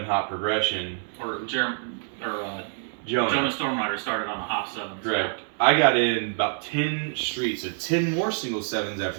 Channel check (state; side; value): silent; left; 60 dB below the other